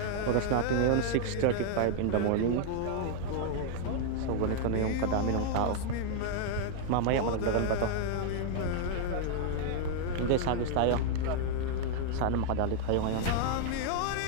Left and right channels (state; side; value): different; both; correlation 0.00